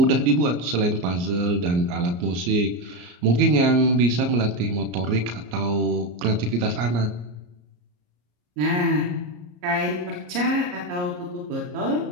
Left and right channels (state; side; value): late; left; 34 ms